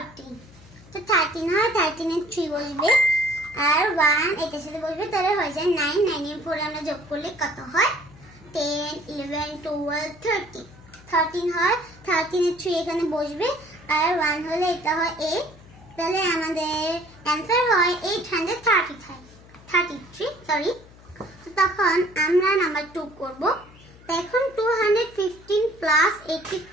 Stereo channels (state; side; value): noise; left; hum, 23 dB below the sound